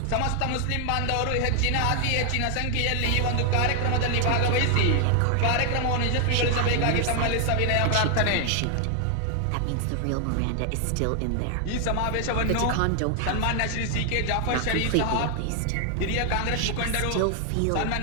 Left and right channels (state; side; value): different; both; correlation 0.00